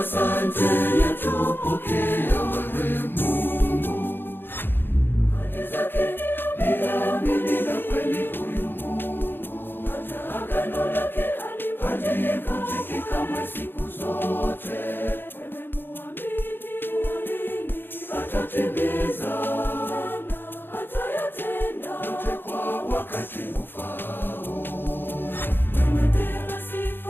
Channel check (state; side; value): late; right; 0.10 ms